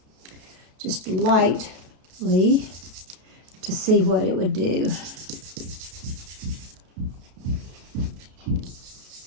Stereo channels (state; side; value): late; left; 32 ms